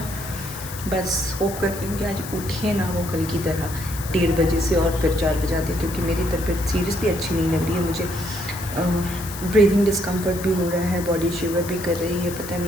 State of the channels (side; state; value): left; noise; hiss, 12 dB below the sound